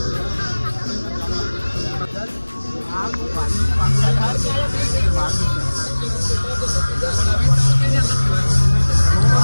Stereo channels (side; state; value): both; inverted; correlation -1.00